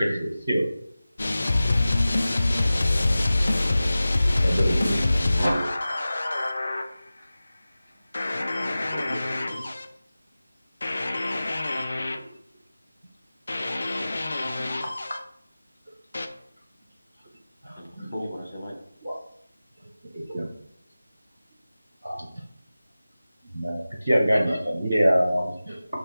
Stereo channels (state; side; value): inverted; both; correlation -0.96